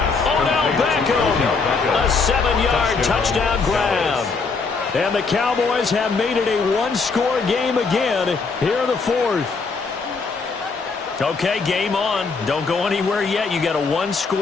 Odell Beckham. A 7-yard touchdown grab. And the Cowboys have made it a 1-score game again here in the 4th. Okay, game on. Don't go anywhere yet. You got a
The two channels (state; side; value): quieter; right; 4.6 dB